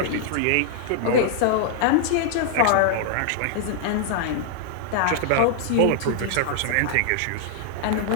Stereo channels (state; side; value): different; both; correlation 0.00